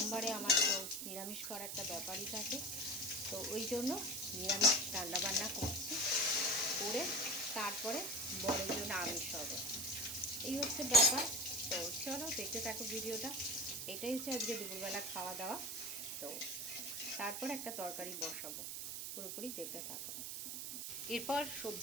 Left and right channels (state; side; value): noise; right; hiss, 5 dB below the sound